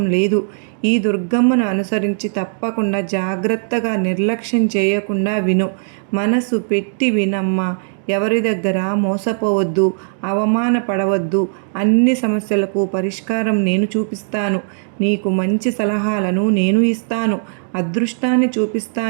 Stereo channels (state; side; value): silent; left; digital silence